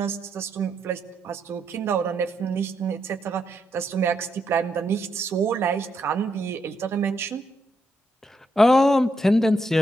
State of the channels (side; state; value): both; normal; correlation 0.80